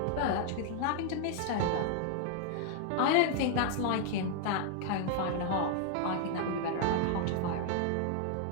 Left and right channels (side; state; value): both; different; correlation 0.00